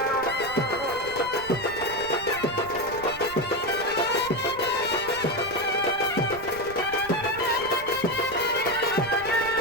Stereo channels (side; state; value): right; noise; rumble, 17 dB below the sound